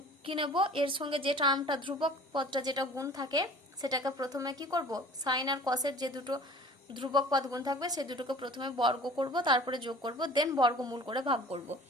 কি নেব, এর সঙ্গে যে টার্মটা ধ্রুবক পদটা যেটা গুণ থাকে সেটাকে প্রথমে কি করব সাইন আর কসের যে দুটো ধ্রুবক পদ গুণ থাকবে সেই দুটোকে প্রথমে বর্গ করব, তারপরে যোগ করব, দেন বর্গমূল করে ভাগ করব।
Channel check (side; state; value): both; normal; correlation 0.45